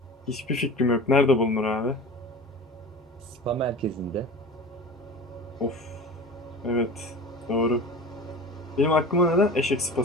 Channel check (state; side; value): normal; both; correlation 0.36